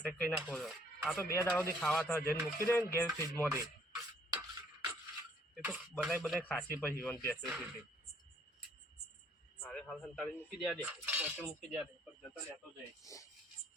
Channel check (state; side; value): normal; both; correlation 0.62